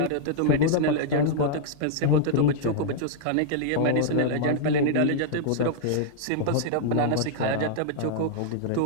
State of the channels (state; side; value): different; both; correlation -0.01